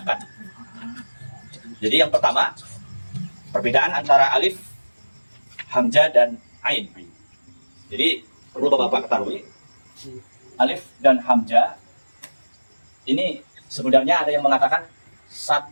Jadi yang pertama, perbedaan antara alif, hamzah dan ain. Jadi perlu bapak-bapak ketahui, alif dan hamzah ini sebenarnya ada yang mengatakan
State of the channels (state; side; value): inverted; both; correlation -1.00